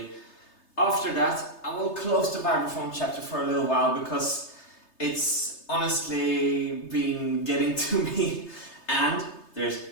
After that, I will close the vibraphone chapter for a little while because It's honestly been getting to me, and there's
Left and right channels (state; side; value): late; right; 3.3 ms